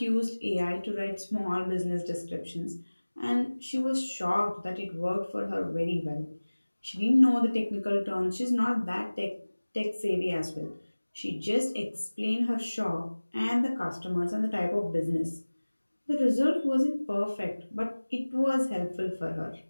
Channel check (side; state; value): both; inverted; correlation -1.00